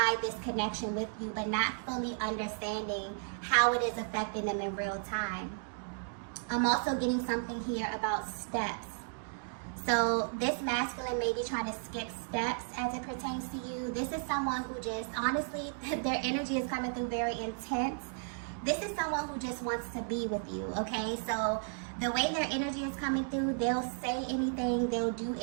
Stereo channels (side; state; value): left; silent; digital silence